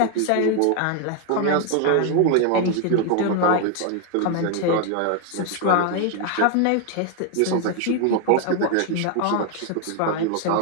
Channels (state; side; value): different; both; correlation 0.00